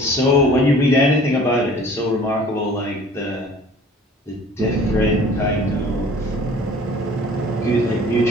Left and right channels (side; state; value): both; normal; correlation 0.49